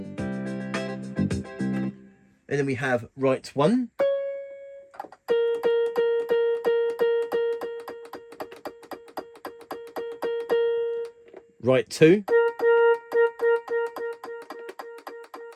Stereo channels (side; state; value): both; identical; correlation 1.00